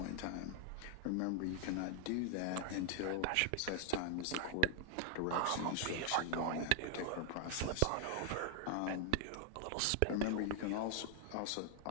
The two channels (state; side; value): different; both; correlation 0.00